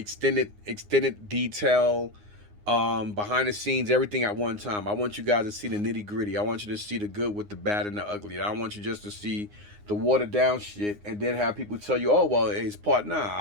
detail, behind the scenes, everything at one time. I want you guys to see the nitty gritty. I want you to see the good with the bad and the ugly. I don't want you just to see the watered down shit and then have people tell you, oh well, it's part. Nah,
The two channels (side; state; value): left; late; 9.7 ms